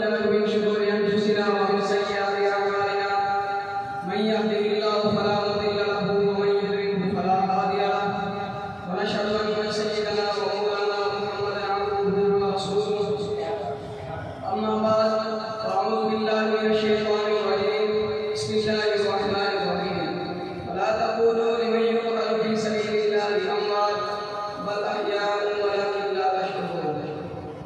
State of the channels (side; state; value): both; identical; correlation 1.00